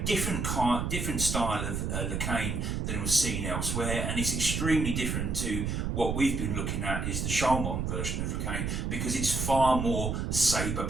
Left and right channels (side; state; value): right; noise; rumble, 1 dB below the sound